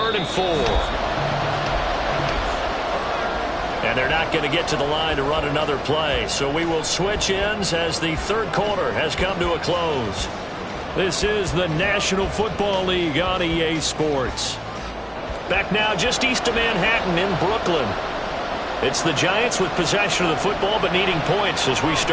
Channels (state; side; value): identical; both; correlation 1.00